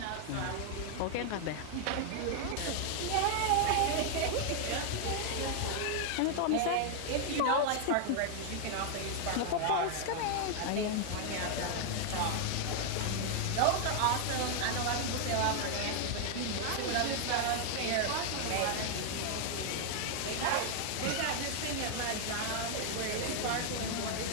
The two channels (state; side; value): different; both; correlation 0.00